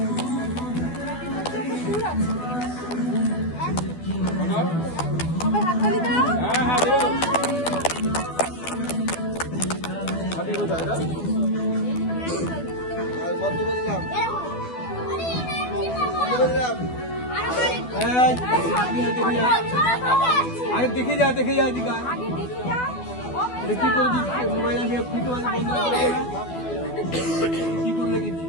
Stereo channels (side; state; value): right; late; 12 ms